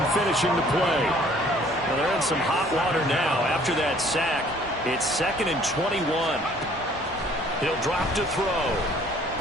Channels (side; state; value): both; normal; correlation 0.57